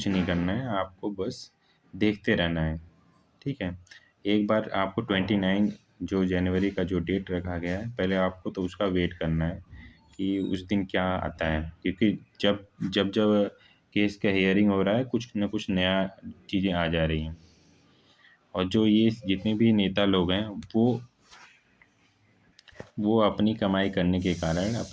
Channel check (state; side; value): identical; both; correlation 1.00